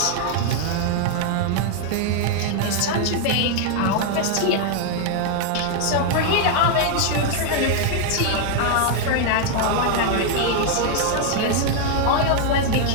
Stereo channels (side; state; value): both; different; correlation 0.00